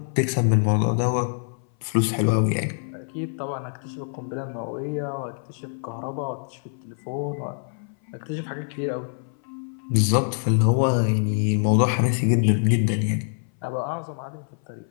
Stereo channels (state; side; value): silent; right; 59 dB below the other